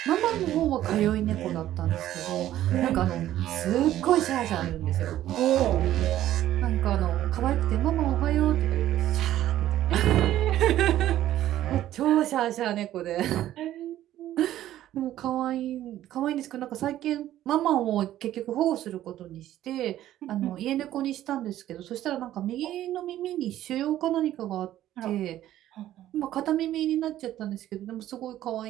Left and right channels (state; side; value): quieter; left; 13.1 dB